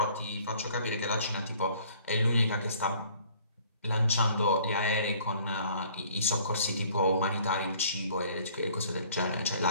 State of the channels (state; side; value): inverted; both; correlation -0.56